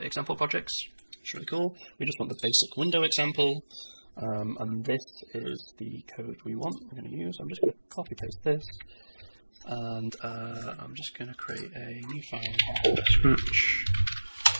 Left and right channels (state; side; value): inverted; both; correlation -1.00